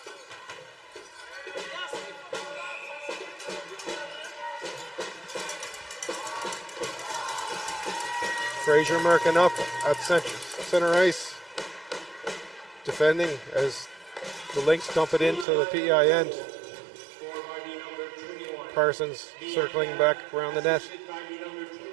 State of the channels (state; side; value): drops out; left; at 15.5 s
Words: Fraser Merkin up at center ice, defending as the Lynx dump it into the PEI end. Parsons circling back around the net.